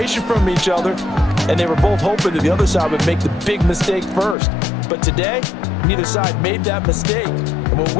from each other, and they were both hoping that the other side would make the big mistake first. But today, neither side made that mistake. And what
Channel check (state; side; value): drops out; right; at 4.4 s